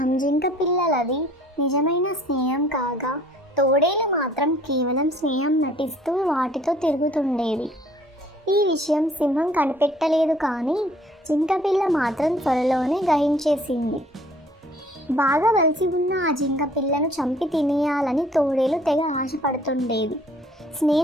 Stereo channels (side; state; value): both; normal; correlation 0.57